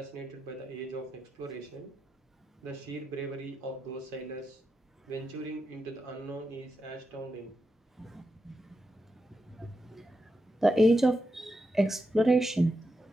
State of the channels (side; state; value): both; normal; correlation 0.87